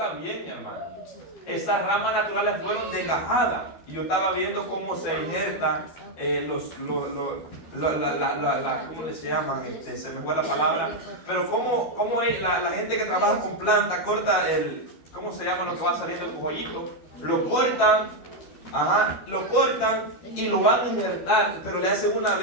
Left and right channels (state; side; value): late; right; 12 ms